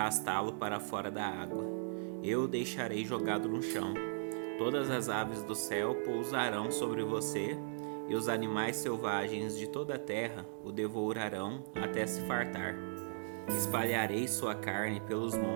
para fora da água. Eu o deixarei jogado no chão. Todas as aves do céu pousarão sobre você, e os animais selvagens de toda a terra o devorarão até se fartar. Espalharei sua carne pelos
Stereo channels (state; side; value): silent; left; digital silence